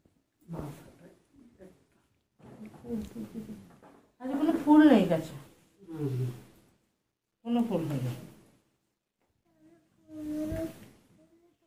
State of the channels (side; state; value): both; identical; correlation 1.00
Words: আজ কোনো ফুল নেই কাছে, কোনো ফুল